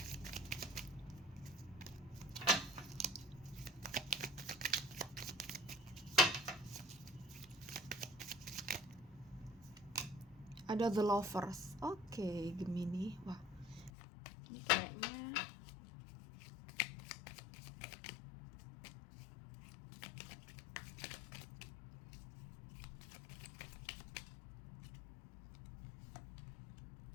Ada The Lovers. Oke, Gemini. Wah, ini kayaknya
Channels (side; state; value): right; drops out; at 13.9 s